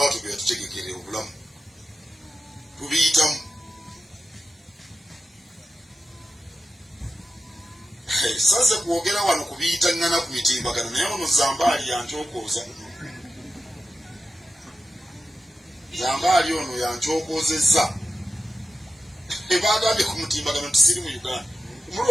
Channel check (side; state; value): both; normal; correlation 0.92